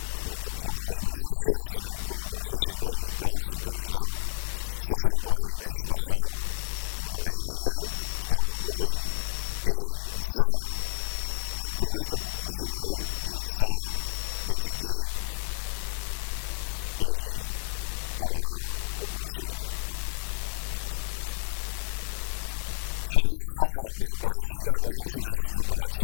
nous proposons même chose que nous proposons ces derniers temps, c'est-à-dire 63 élus, 60 pour le Main Island, 3 pour Rodrigue, et 20, une dose de proportionnel de 20 députés élus à la proportionnelle. Financement ban parti, la loi au financement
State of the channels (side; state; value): right; silent; digital silence